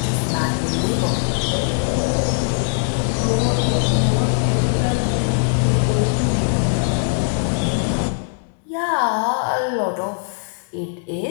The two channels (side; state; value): right; silent; digital silence